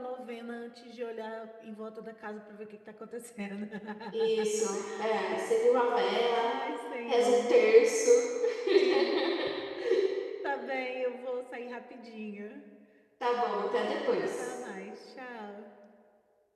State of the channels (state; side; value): identical; both; correlation 1.00